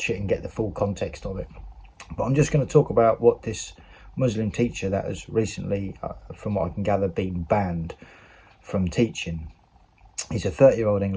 it and get the full context of it. But I'm just going to talk about what this Muslim teacher that has recently, from what I can gather, been banned from teaching. He's a 30-year-old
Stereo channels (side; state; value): both; identical; correlation 1.00